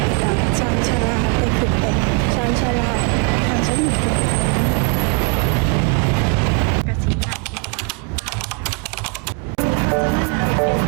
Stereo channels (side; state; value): left; quieter; 34.6 dB